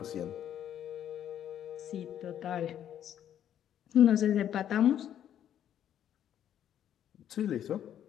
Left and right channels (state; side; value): quieter; right; 10.3 dB